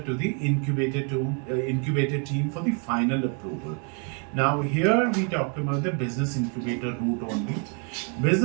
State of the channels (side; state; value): left; quieter; 39.3 dB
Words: to the incubator team for the final approval. Now here we talk about the business incubator route only.